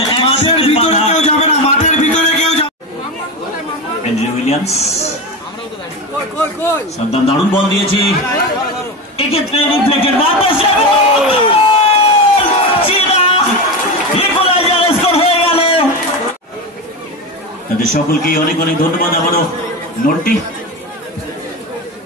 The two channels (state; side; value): normal; both; correlation 0.20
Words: মাঠের ভিতরে কেউ যাবে না, মাঠের ভিতরে কেউ যাবে। অ্যান্ড্রে উইলিয়ামস সাদ্দাম দারুণ বল দিয়েছে, এক্ষেত্রে রিফ্লেক্টেড তাদের সকলকে অনেক অনেক ধন্যবাদ। আবারও নোটটি